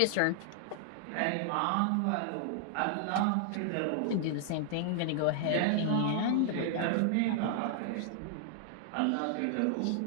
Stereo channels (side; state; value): both; different; correlation -0.01